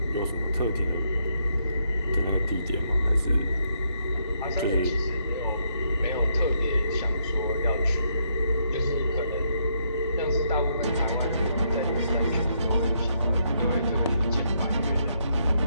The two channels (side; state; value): both; inverted; correlation -0.75